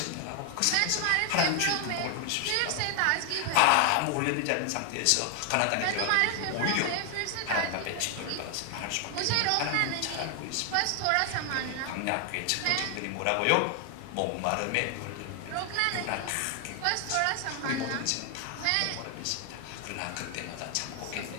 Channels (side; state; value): both; different; correlation 0.00